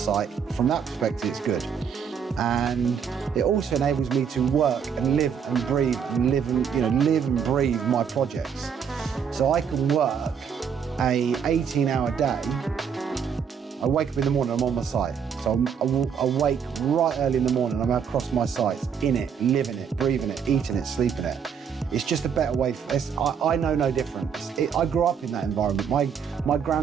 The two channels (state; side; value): quieter; left; 7.2 dB